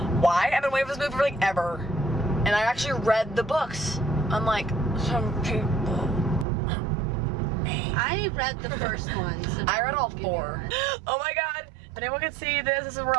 Why? I've been waiting for this movie for like ever. And I actually read the books. Unlike some people. I read the first one. So I read all 4. Oh my god. If anyone can see this, this is where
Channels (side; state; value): left; drops out; at 6.5 s